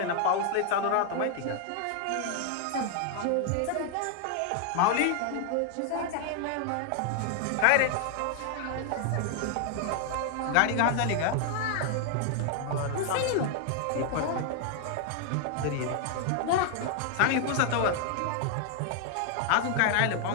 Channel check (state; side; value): different; both; correlation 0.00